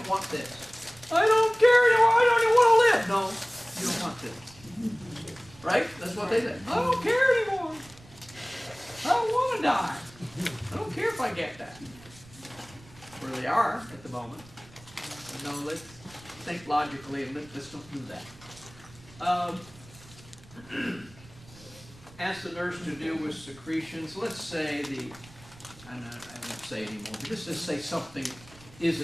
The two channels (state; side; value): noise; right; rumble, 22 dB below the sound